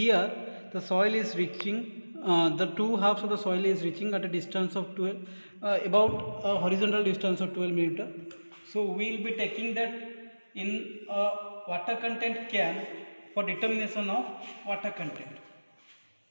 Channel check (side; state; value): both; inverted; correlation -1.00